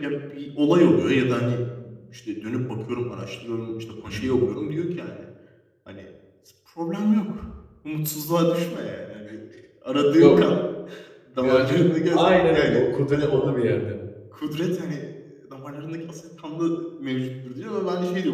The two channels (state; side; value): identical; both; correlation 1.00